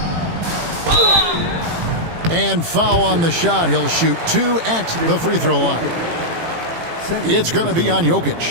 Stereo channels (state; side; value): late; left; 18 ms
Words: And foul on the shot. He'll shoot 2 at the free throw line. It's going to be on